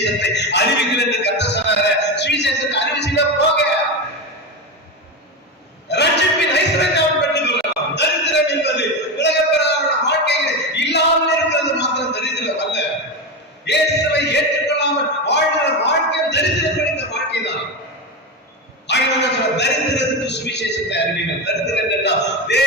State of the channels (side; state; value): both; normal; correlation 0.16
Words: அறிவிக்கல என்று கர்த்தர் சொன்னாரு. சுவிசேஷத்தை அறிவிச்சுனா போக, தரித்திரத்துக்கு சுவிசேஷத்தை அறிவீர்கள். தரித்திரம் என்றால்